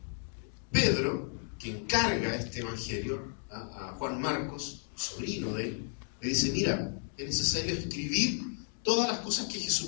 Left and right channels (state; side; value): silent; right; 56 dB below the other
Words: Pedro, que encarga este Evangelio a Juan Marcos, sobrino de él, le dice, mira, es necesario escribir todas las cosas que